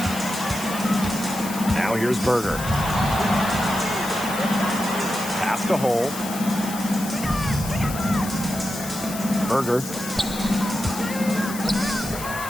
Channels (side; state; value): left; noise; hiss, 10 dB below the sound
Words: Now here's Berger. Pass to Hole. Berger.